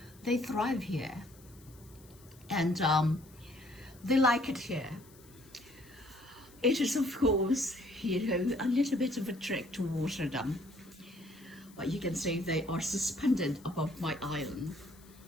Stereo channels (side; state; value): left; noise; hiss, 25 dB below the sound